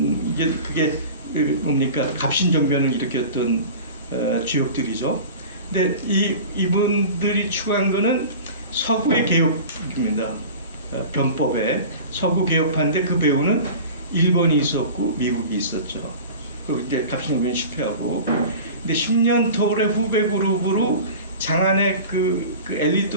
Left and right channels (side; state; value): both; inverted; correlation -0.37